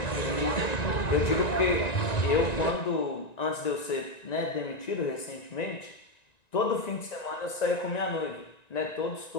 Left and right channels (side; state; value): right; late; 1.9 ms